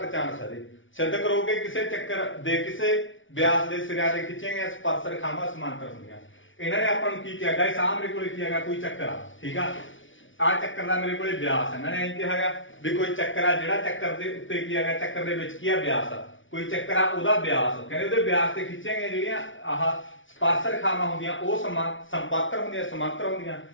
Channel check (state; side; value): late; right; 0.56 ms